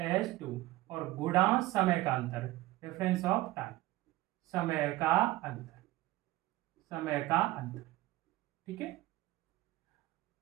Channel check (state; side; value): quieter; left; 17.5 dB